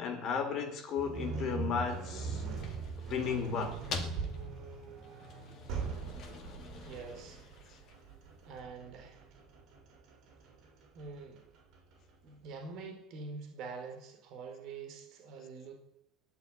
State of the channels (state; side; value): normal; both; correlation 0.42